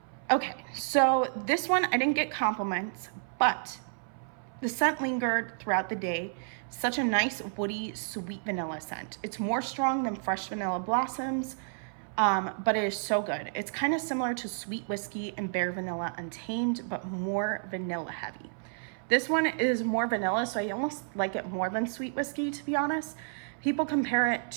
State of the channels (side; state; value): left; silent; 57 dB below the other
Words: Okay, so this one I didn't get compliments, but the scent lingered throughout the day. Such a nice woody, sweet vanilla scent. It's more strong than fresh vanilla blossoms, but it is so good. It's kind of similar to Sweet Whiskey and Bare Vanilla Untamed, but more vanilla heavy. This one is more vanilla, so I almost like it more than Sweet Whiskey, to be honest. People compare it